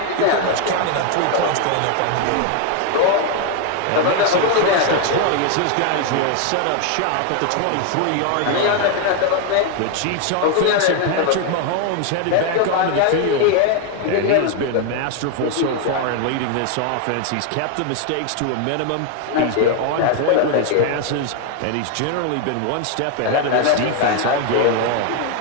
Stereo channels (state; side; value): different; both; correlation 0.01